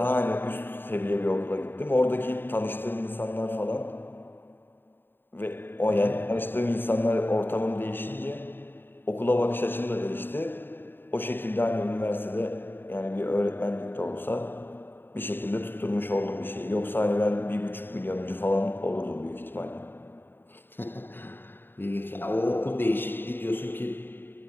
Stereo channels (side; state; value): right; late; 0.097 ms